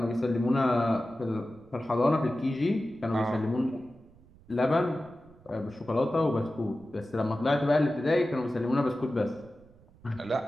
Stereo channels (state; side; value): noise; right; rumble, 26 dB below the sound